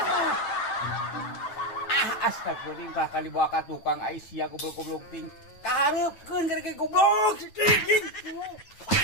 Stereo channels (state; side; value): late; right; 9.1 ms